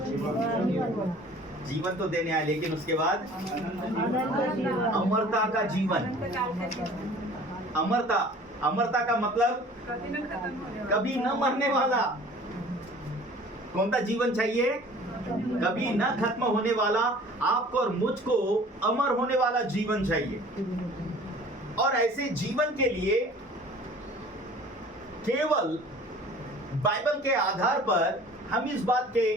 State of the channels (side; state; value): both; normal; correlation 0.47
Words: जीवन तो देने आए, लेकिन उसके बाद अमरता का जीवन। अमरता का मतलब कभी न मरने वाला। कौन सा जीवन चाहिए? कभी न खत्म होने वाला, आपको और मुझको अमर होने वाला जीवन चाहिए। और ऐसे जीवन के लिए केवल बाइबल के आधार पर हम इस बात के